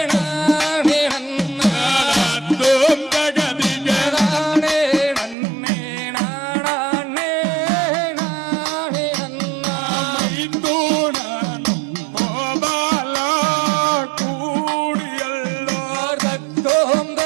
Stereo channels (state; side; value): drops out; left; at 5.4 s